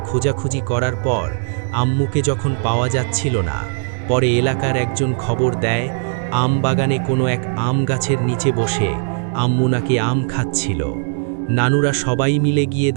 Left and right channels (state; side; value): silent; left; digital silence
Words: খোঁজাখুঁজি করার পর আম্মুকে যখন পাওয়া যাচ্ছিল না, পরে এলাকার একজন খবর দেয় আম বাগানে কোনো এক আম গাছের নিচে বসে আম্মু নাকি আম খাচ্ছিল। নানুরা সবাই মিলে গিয়ে